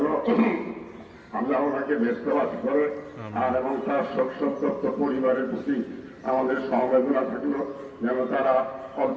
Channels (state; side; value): identical; both; correlation 1.00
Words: আল্লাহ ওনাকে ব্যস্তবাদ করে, আর এবং তার শোক সন্তপ্ত পরিবারের প্রতি আমাদের সমবেদনা থাকলো যেন তারা